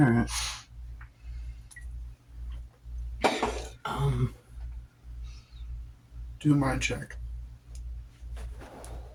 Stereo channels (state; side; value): identical; both; correlation 1.00